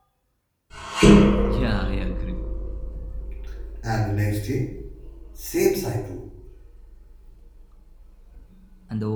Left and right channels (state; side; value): identical; both; correlation 1.00